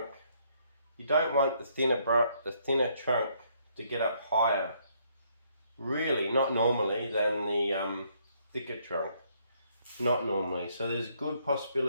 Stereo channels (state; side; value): inverted; both; correlation -0.69